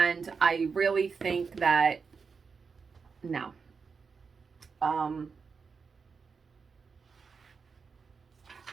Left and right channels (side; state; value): left; quieter; 5.3 dB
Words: I really think that, no.